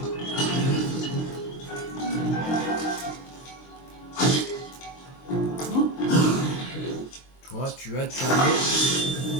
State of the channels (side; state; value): right; late; 23 ms